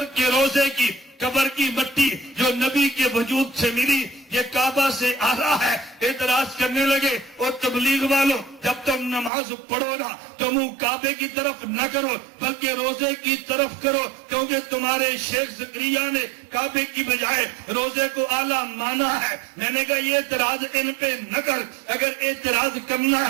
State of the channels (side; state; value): left; drops out; at 9.3 s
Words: کے روزے کی قبر کی مٹی جو نبی کے وجود سے ملی یہ کعبہ سے آ رہا ہے۔ اعتراض کرنے لگے، اور تبلیغ والوں جب تم نماز پڑھو نا تو منہ کعبے کی طرف نہ کرو بلکہ روزے کی طرف کرو، کیونکہ تمہارے شیخ زکریا نے کعبے کی بجائے روزے کو اعلیٰ مانا ہے۔ میں نے کہا یہ اعتراض ان پہ نہ کر، اگر اعتراض کرنا